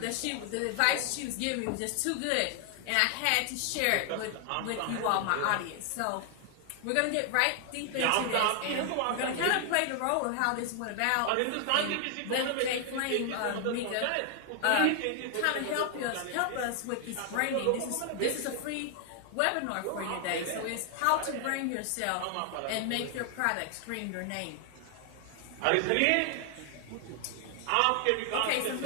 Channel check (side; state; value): both; different; correlation 0.00